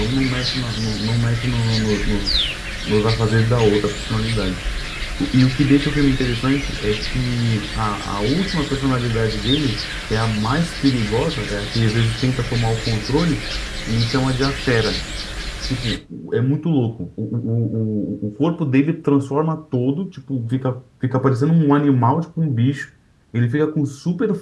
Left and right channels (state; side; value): identical; both; correlation 1.00